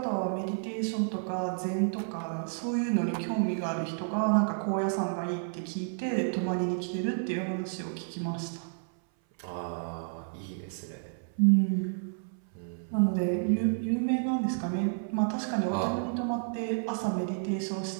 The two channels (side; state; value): left; silent; 57 dB below the other